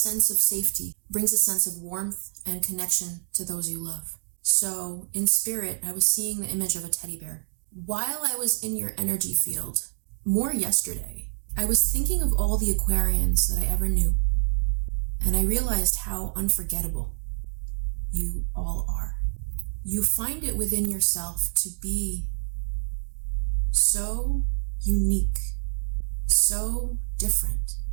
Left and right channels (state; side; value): silent; left; digital silence